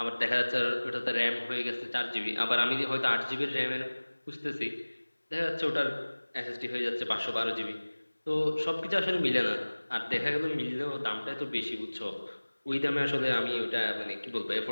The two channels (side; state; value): both; inverted; correlation -1.00